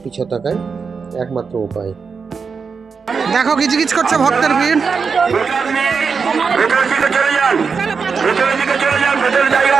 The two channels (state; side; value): quieter; left; 5.4 dB